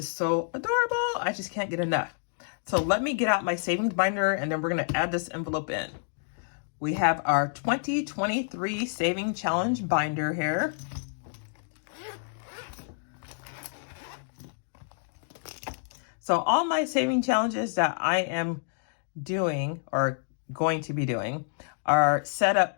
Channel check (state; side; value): silent; right; digital silence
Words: so adorable. I just can't get enough. So let me get out my savings binder and then we're going to add this envelope in. We have our 2023 Saving Challenge binder here. So all my saving challenges that I am doing or going to be doing are set up